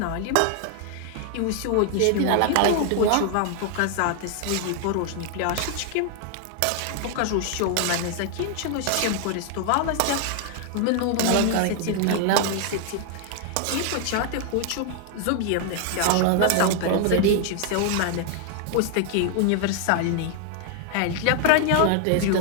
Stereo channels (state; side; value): different; both; correlation 0.00